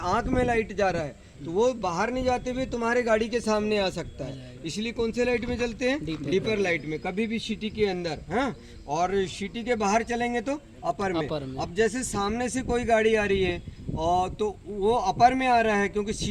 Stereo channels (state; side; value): identical; both; correlation 1.00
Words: आंख में लाइट जा रहा है तो वो बाहर नहीं जाते हुए तुम्हारे गाड़ी के सामने आ सकता है। इसलिए कौन से लाइट में चलते हैं? डीपर लाइट में, कभी भी सिटी के अंदर। हाँ, और सिटी के बाहर चलेंगे तो अपर में। अब जैसे सामने से कोई गाड़ी आ रही है और तो वो अपर में आ रहा है, क्योंकि